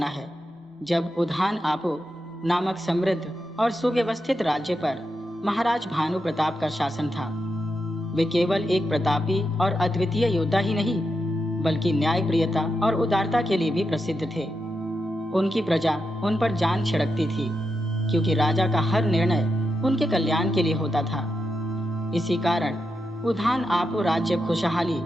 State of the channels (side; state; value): both; normal; correlation 0.86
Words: है, जब उधान आपो नामक समृद्ध और सुव्यवस्थित राज्य पर महाराज भानु प्रताप का शासन था। वे केवल एक प्रतापी और अद्वितीय योद्धा ही नहीं, बल्कि न्यायप्रियता और उदारता के लिए भी प्रसिद्ध थे। उनकी प्रजा उन पर जान छिड़कती थी, क्योंकि राजा का हर निर्णय उनके कल्याण के लिए होता था। इसी कारण उधान आपो राज्य खुशहाली